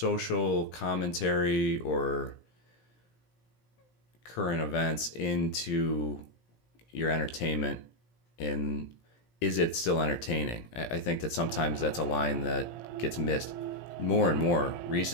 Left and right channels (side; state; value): right; late; 17 ms